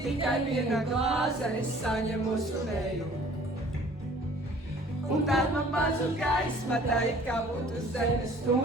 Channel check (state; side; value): normal; both; correlation 0.52